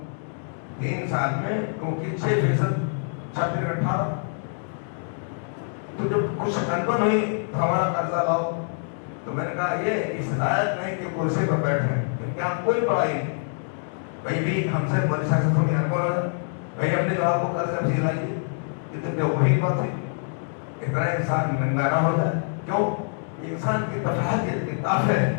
3 سال میں, کیونکہ 6% 18. تو جب کچھ انبن ہوئی تو ہمارا قرضہ لاؤ, تو میں نے کہا یہ اس لائق نہیں کہ کرسی پر بیٹھے, کیونکہ ہم کوئی پڑھائی نہیں. بھائی بھی ہم سے بڑی سیاست تھوڑی انبن ہو جائے, بھائی اپنے جواب کو قرض افزی لائیے. یہ تو وہی بات ہے, اتنا انسان ننگا نہ ہو جائے. کیوں؟ انسان کی تفاہت کی طاقت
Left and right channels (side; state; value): right; silent; digital silence